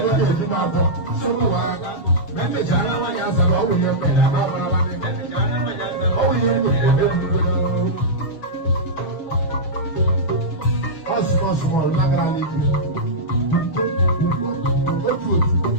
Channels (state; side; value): late; right; 7.1 ms